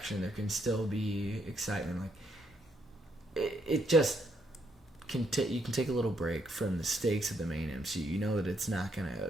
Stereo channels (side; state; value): both; normal; correlation 0.74